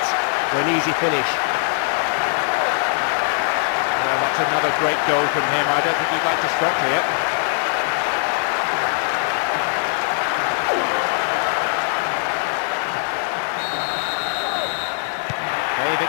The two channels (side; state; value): right; silent; 65 dB below the other